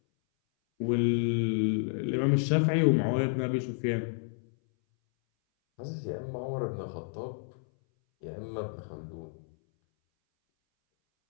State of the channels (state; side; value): silent; right; 58 dB below the other